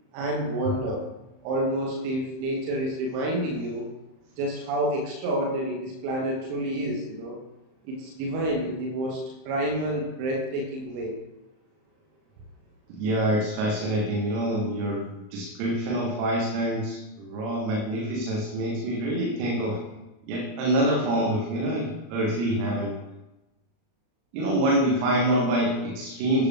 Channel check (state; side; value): late; left; 38 ms